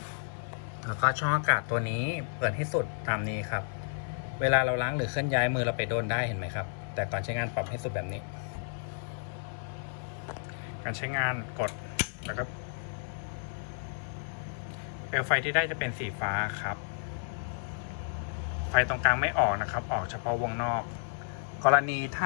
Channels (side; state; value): right; silent; 57 dB below the other